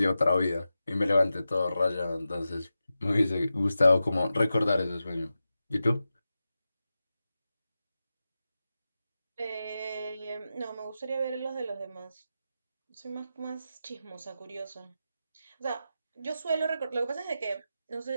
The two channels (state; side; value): inverted; both; correlation -0.91